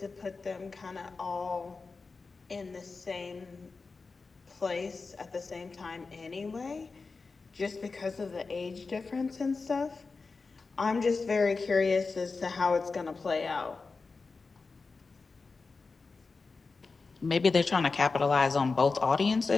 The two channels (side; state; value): right; quieter; 4.2 dB